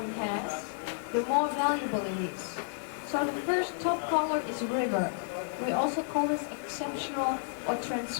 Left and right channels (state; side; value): silent; right; 57 dB below the other